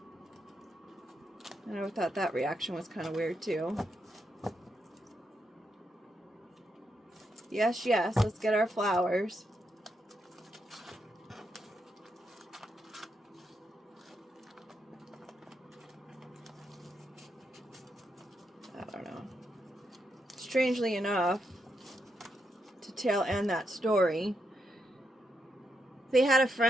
And I thought that reaction was kind of weird, too. Yes, yes, let's get our flowers. I don't know. Strangely enough, to tail end that story, they had a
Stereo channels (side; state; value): both; normal; correlation 0.82